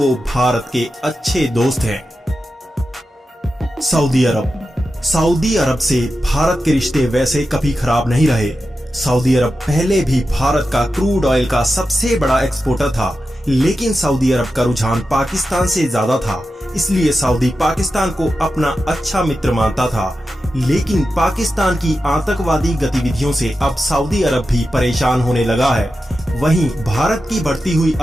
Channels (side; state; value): both; normal; correlation 0.91